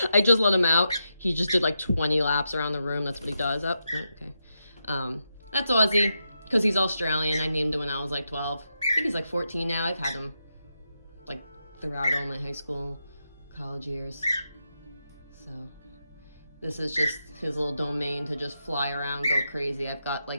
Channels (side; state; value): both; inverted; correlation -0.85